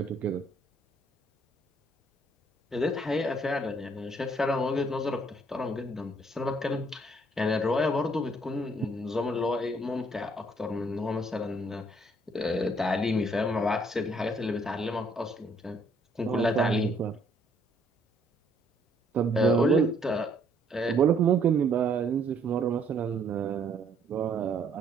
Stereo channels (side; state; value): both; normal; correlation 0.65